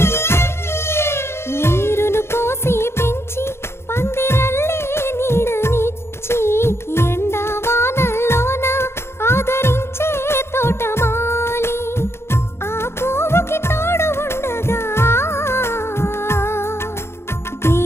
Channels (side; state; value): right; late; 0.12 ms